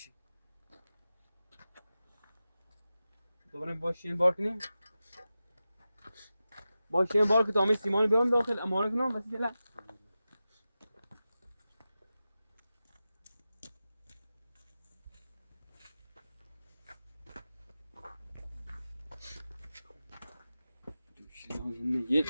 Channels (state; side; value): inverted; both; correlation -0.94